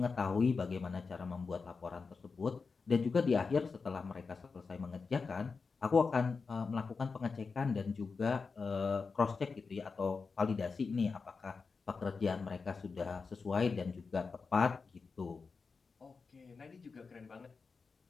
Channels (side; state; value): right; quieter; 4.8 dB